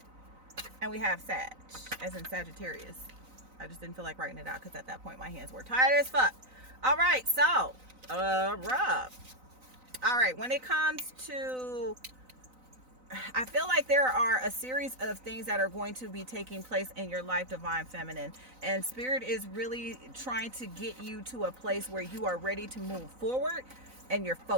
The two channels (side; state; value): left; late; 3.9 ms